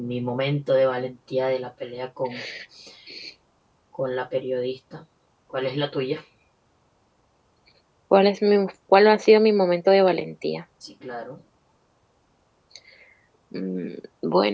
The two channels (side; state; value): both; identical; correlation 1.00